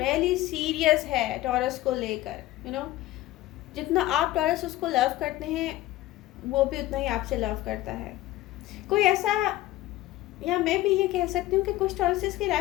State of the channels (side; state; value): right; quieter; 16.1 dB